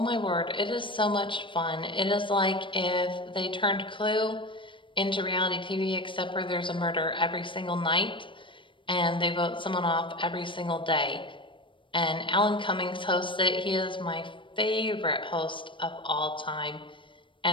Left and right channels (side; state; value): right; late; 0.24 ms